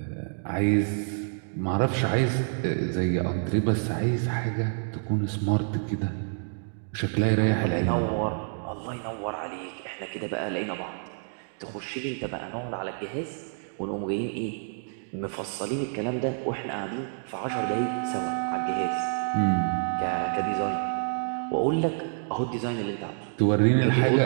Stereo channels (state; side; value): silent; left; digital silence